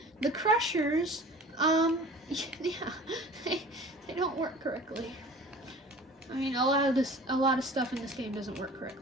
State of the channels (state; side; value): normal; both; correlation 0.43